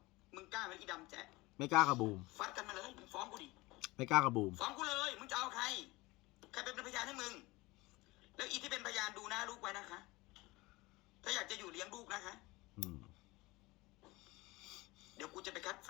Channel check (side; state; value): right; quieter; 21.6 dB